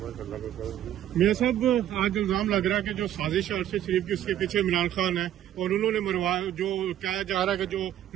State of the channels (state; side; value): quieter; left; 11.7 dB